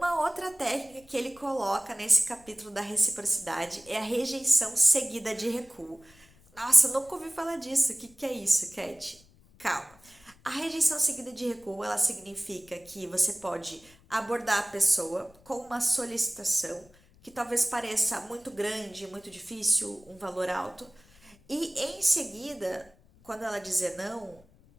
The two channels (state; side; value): noise; left; rumble, 28 dB below the sound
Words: outra técnica que ele coloca nesse capítulo da reciprocidade é a rejeição seguida de recuo. Nossa, nunca ouvi falar disso. O que é isso, Cat? Calma. A rejeição seguida de recuo, ela significa que você pode abordar a pessoa com uma solicitação que talvez pareça muito grande, muito difícil, um valor alto, e em seguida, quando ela dizer não,